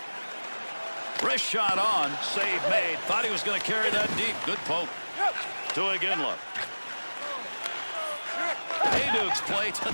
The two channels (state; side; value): inverted; both; correlation -1.00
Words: Wrist shot on. Save made. Thought he was going to carry that deep. Good poke. To Iginla. Hayduk's play